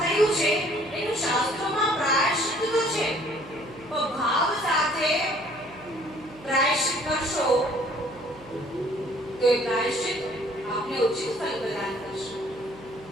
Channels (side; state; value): right; noise; hum, 21 dB below the sound